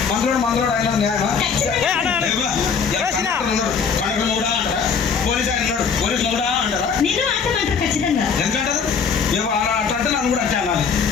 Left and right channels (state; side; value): quieter; right; 6.1 dB